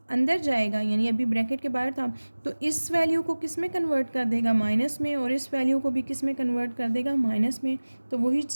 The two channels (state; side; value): inverted; both; correlation -1.00